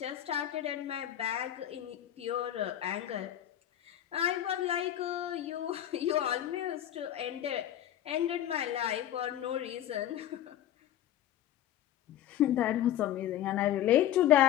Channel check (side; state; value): right; quieter; 11.9 dB